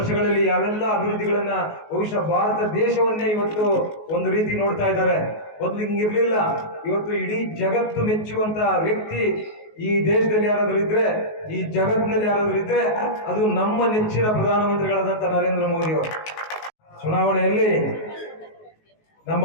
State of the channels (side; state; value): right; late; 19 ms